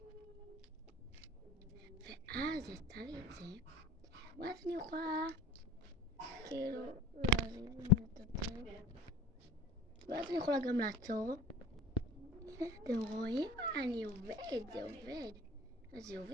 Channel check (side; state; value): both; normal; correlation 0.40